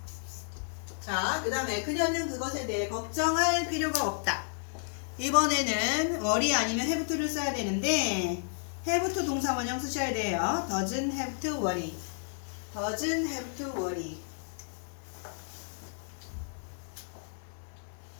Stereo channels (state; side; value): silent; right; digital silence